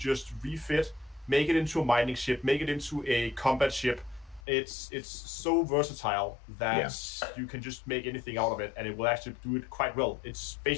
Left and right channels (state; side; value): drops out; right; at 4.4 s